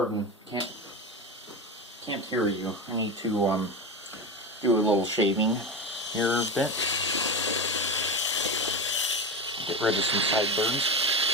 Can't hear you. I need to do a little shaving here a bit. Get rid of some sideburns.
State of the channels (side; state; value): both; normal; correlation 0.20